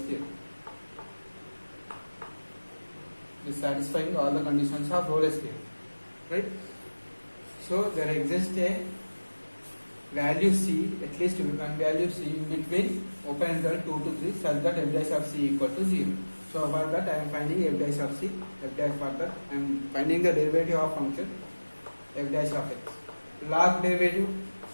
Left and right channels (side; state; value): both; inverted; correlation -1.00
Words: Is satisfying all the conditions of Rolle's theorem, right? So there exists a value c, at least one value c in between open interval 2 to 3 such that f dash of c equal to 0. So for that I am finding f dash of c, for that I am finding the derivative of function f dash of x. Log derivative